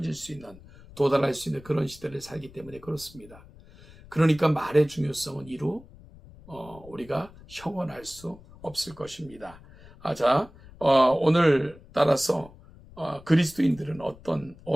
수 있는, 도달할 수 있는 그런 시대를 살기 때문에 그렇습니다. 그러니까 말의 중요성은 이루 우리가 형언할 수 없을 것입니다. 오늘 따라서 그리스도인들은 어떤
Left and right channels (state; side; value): noise; left; rumble, 21 dB below the sound